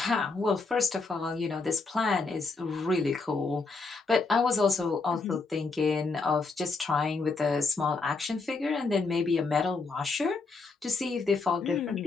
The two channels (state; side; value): quieter; right; 4.0 dB